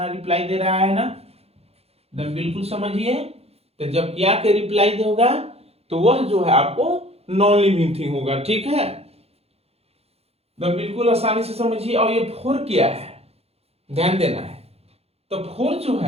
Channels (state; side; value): late; left; 0.29 ms